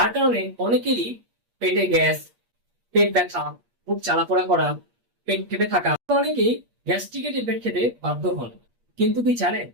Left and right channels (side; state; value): left; late; 8.5 ms